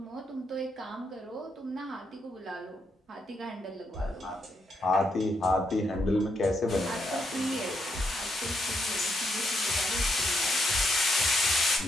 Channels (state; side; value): normal; both; correlation 0.78